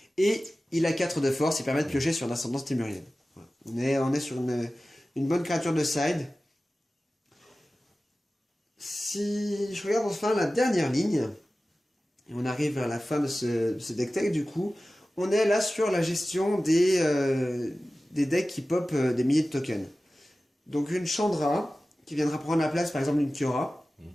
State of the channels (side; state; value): both; normal; correlation 0.96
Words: Et il a 4 de force, il permet de piocher sur l'ascendance témurienne. Voilà. On est sur une bonne créature de side. Si je regarde enfin la dernière ligne, et on arrive vers la fin de ce deck tech, du coup, on est là sur la gestion des decks qui pop des milliers de tokens. Donc une Chandra, qui viendra prendre la place par exemple d'une Kiora.